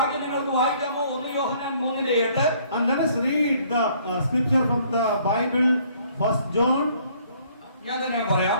നിങ്ങൾക്ക് വായിക്കാമോ? 1 യോഹന്നാൻ 3:8. And let us read the scripture from the Bible, 1 John. ഞാൻ തന്നെ പറയാം,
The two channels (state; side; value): inverted; both; correlation -0.61